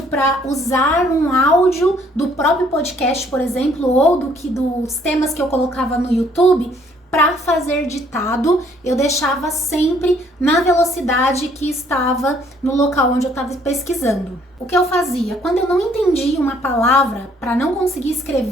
para usar um áudio do próprio podcast, por exemplo, ou dos temas que eu colocava no YouTube, para fazer ditado, eu deixava sempre na velocidade que estava no local onde eu estava pesquisando. O que eu fazia? Quando eu não entendia uma palavra, para não conseguir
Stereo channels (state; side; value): normal; both; correlation 0.63